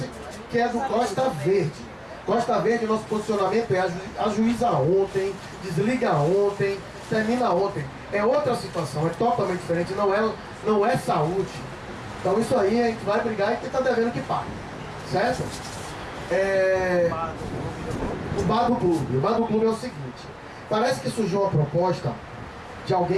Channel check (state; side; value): identical; both; correlation 1.00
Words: que é do Costa Verde. Costa Verde, nosso posicionamento é ajuiza ontem, desliga ontem, termina ontem. É outra situação, é totalmente diferente, não é saúde. Então isso aí a gente vai brigar e quem está devendo que pague. Certo? O bar do clube. O bar do clube é o seguinte, parece que surgiu uma proposta de